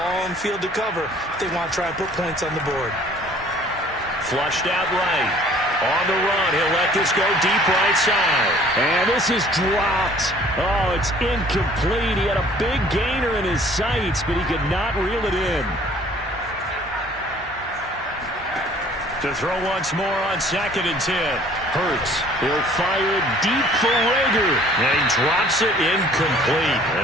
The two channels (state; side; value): normal; both; correlation 0.54